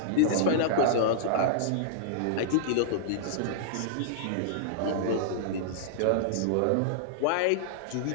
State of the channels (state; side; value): different; both; correlation -0.02